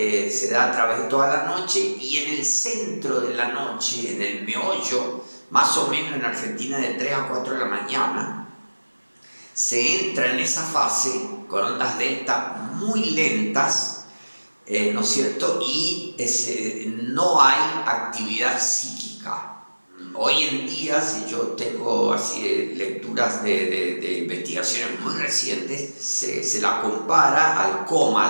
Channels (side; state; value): both; inverted; correlation -1.00